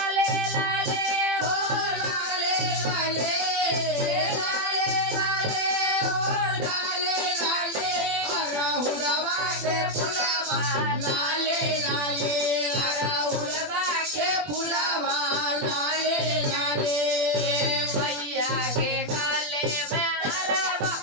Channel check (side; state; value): left; late; 20 ms